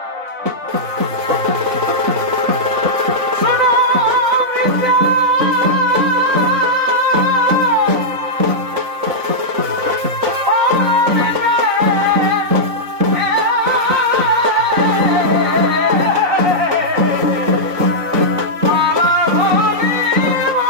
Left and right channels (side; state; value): left; late; 3.9 ms